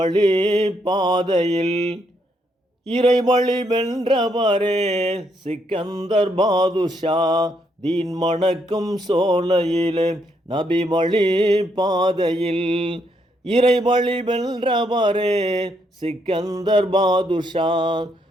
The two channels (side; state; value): both; normal; correlation 0.75